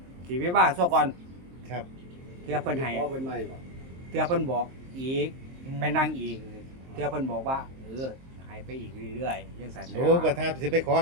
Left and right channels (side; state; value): left; late; 23 ms